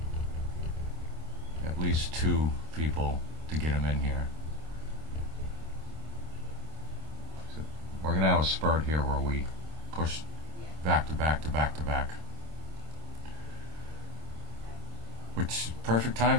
at least 2 people to get them in here. So we're going to have a spurt here where we push back to back to back to back. Which is perfect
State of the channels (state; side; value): late; left; 26 ms